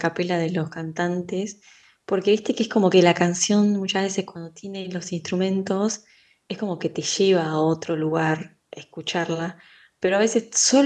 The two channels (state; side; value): identical; both; correlation 1.00